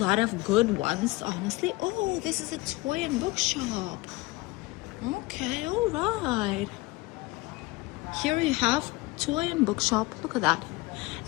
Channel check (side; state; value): right; quieter; 22.0 dB